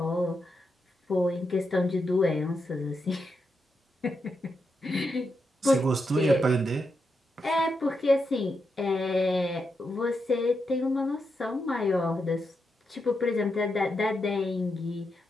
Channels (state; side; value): normal; both; correlation 0.85